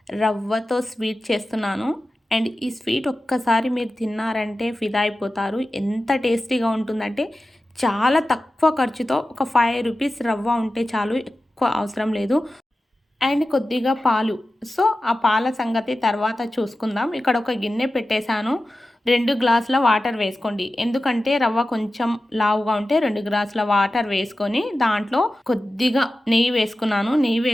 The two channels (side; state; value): both; normal; correlation 0.94